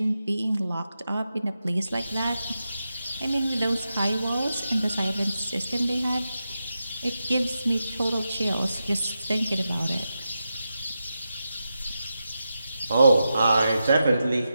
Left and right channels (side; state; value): both; inverted; correlation -0.89